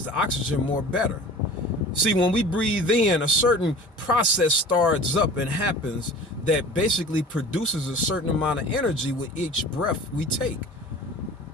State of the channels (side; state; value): both; normal; correlation 0.41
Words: the oxygen more better. See, when we breathe in, a certain process starts up and happens that basically produces a certain amount of energy with each breath we take.